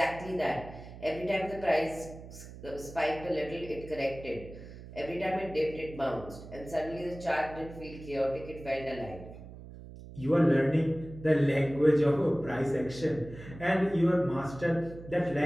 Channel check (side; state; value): right; noise; hum, 15 dB below the sound